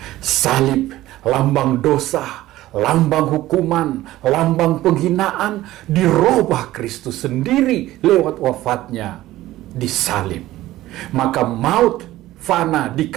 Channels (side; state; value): left; quieter; 15.8 dB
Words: Salib, lambang dosa, lambang hukuman, lambang penghinaan, dirubah Kristus sendiri lewat wafatnya di salib. Maka maut fana